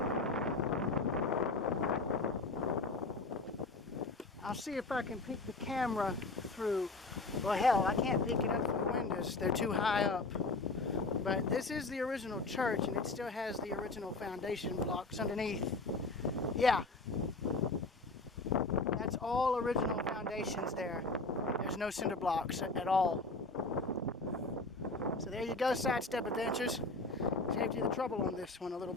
I'll see if I can peek the camera through. Well, hell, I can't peek it up through the windows. They're too high up. But this is the original church, and it still has the original foundation blocks underneath. Yeah. That's all original foundations there. There's no cinder blocks at all. So there you go, sidestep adventures. Saved you the trouble on this one a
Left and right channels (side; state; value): right; quieter; 3.3 dB